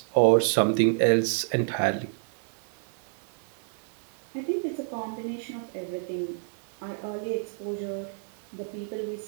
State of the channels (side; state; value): left; silent; 59 dB below the other